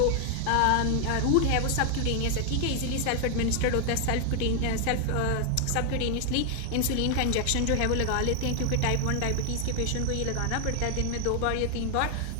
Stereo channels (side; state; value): both; different; correlation 0.00